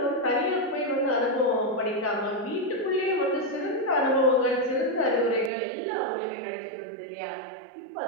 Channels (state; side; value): drops out; left; at 5.5 s